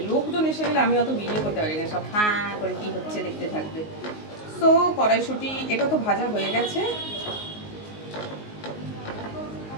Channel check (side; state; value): right; late; 19 ms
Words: লোকজন এসে গেলে আমি অত ভিডিও করতে পারি না, সব হ্যাঁ করে কি হচ্ছে দেখতে থাকবে। তো কড়াইশুঁটি এটা তো ভাজা হয়ে গেছে।